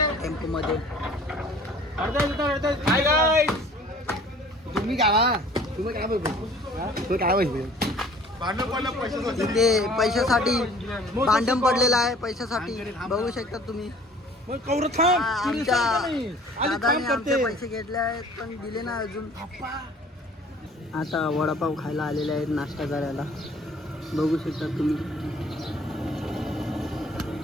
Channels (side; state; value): both; normal; correlation 0.51